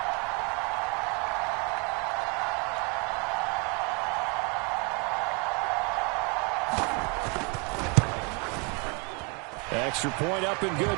Extra point up and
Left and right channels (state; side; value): quieter; left; 32.9 dB